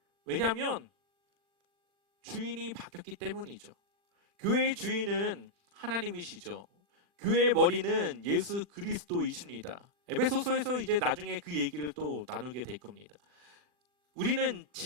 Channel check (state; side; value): late; left; 40 ms